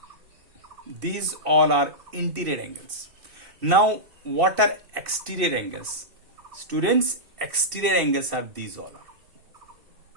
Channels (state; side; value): late; left; 2.7 ms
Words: are interior angles. Now, what are exterior angles? Students, exterior angles are these all are.